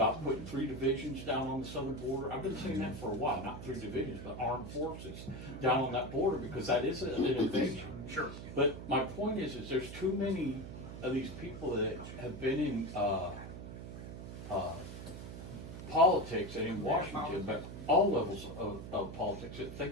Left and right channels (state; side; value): noise; right; hum, 10 dB below the sound